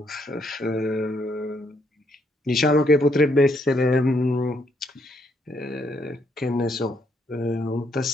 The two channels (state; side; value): normal; both; correlation 0.73